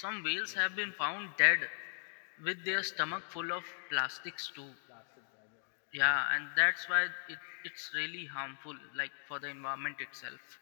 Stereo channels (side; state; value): right; silent; digital silence